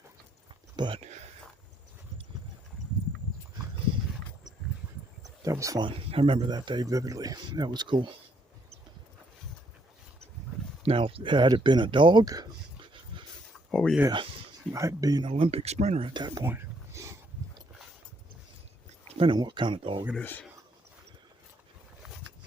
But that was fun. I remember that day vividly. That was cool. Now, had it been a dog, oh yeah, I'd be an Olympic sprinter at that point. Depending on what kind of dog it is.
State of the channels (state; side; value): normal; both; correlation 0.70